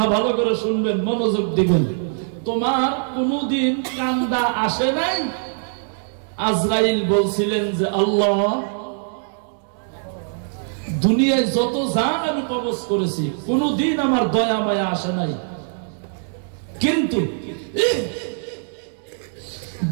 ভালো করে শুনবেন, মনোযোগ দিবেন। তোমার কোনদিন কান্দা আসে নাই? আজরাইল বলছিলেন যে আল্লাহ, দুনিয়ায় যত জান আমি কবজ করেছি, কোনদিন আমার দয়া মায়া আসে নাই, কিন্তু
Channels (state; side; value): silent; left; digital silence